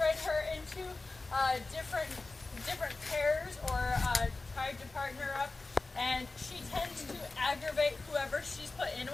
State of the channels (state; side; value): quieter; right; 3.4 dB